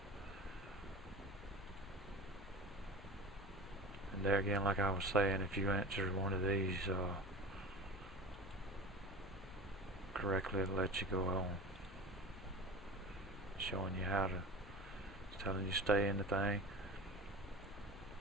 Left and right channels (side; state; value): both; normal; correlation 0.33